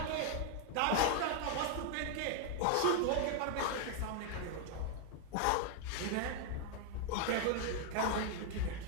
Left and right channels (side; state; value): both; different; correlation 0.00